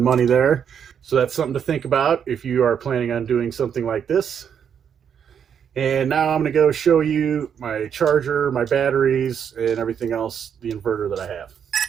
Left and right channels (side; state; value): left; quieter; 7.9 dB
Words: money there. So that's something to think about if you are planning on doing something like this. And now I'm going to go show you my charger, my batteries, and everything else, the inverter that I have.